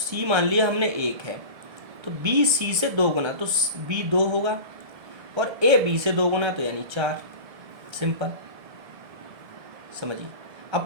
मान लिया हमने 1 है, तो बी सी से 2 गुना तो बी 2 होगा, और ए बी से 2 गुना तो यानी 4। सिंपल, समझिए। अब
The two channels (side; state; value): left; late; 1.3 ms